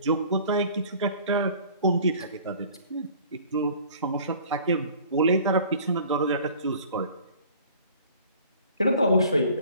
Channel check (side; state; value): both; inverted; correlation -0.49